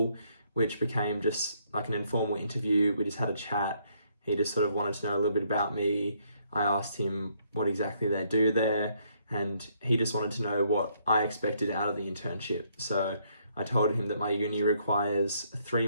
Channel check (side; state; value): both; inverted; correlation -0.70